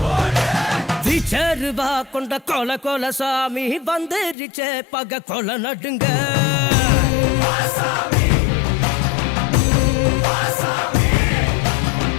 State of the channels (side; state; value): right; drops out; at 4.4 s